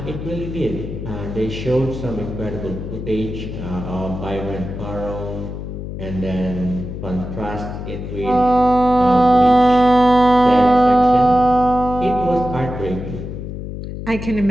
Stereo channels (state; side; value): noise; left; hum, 8 dB below the sound